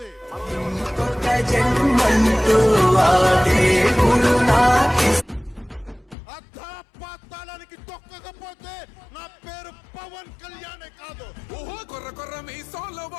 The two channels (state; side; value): drops out; right; at 6.2 s